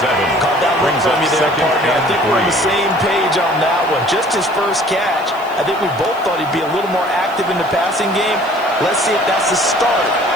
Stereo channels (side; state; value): left; noise; hiss, 25 dB below the sound